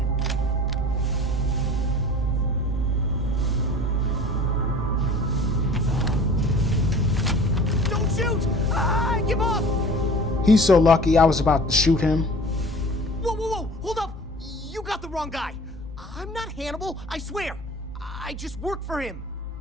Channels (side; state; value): both; normal; correlation 0.43